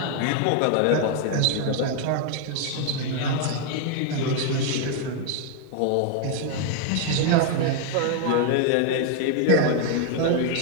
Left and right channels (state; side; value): different; both; correlation 0.00